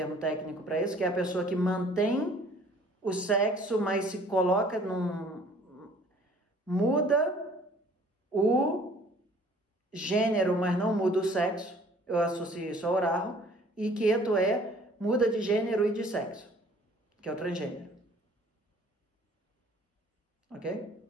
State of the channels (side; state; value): both; normal; correlation 0.54